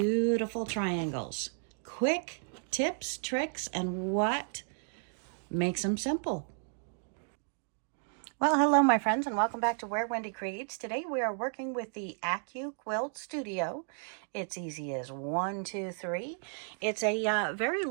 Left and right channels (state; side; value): silent; left; 56 dB below the other